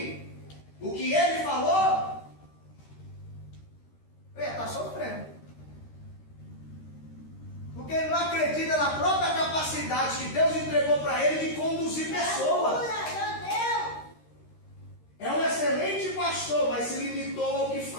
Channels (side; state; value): right; late; 13 ms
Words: o que ele falou, eu ia estar sofrendo. Porque ele não acredita na própria capacidade que Deus entregou para ele de conduzir pessoas. É um excelente pastor, mas se limitou ao que